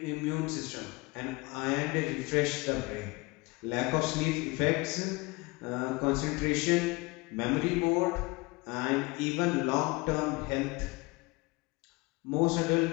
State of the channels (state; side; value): quieter; right; 24.6 dB